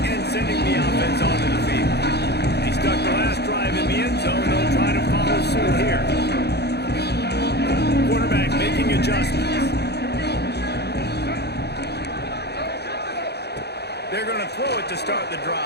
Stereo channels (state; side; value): late; right; 0.48 ms